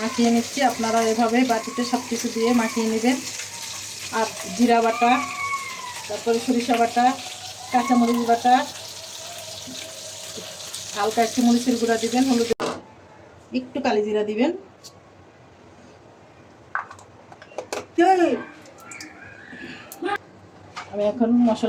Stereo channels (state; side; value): identical; both; correlation 1.00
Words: নিচ্ছি। আপনারা এভাবে বাটিতে সব কিছু দিয়ে মাখিয়ে নেবেন। আর জিরা বাটা, তারপরে সরিষা বাটা, কাঁচামরিচ বাটা, হালকা একটু মরিচের গুঁড়া দিবেন, হলুদ, একটু কালি জিরা দিবেন। আমি এখন